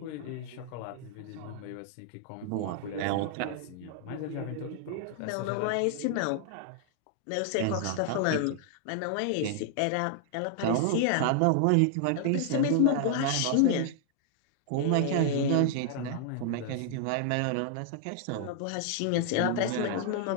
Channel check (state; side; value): different; both; correlation 0.00